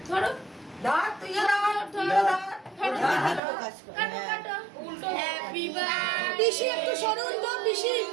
ধরো দাঁত তুই কাটো কাটো উল্টো হ্যাপি বার্থডে পিসি একটু সরুন তো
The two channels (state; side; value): drops out; left; at 3.4 s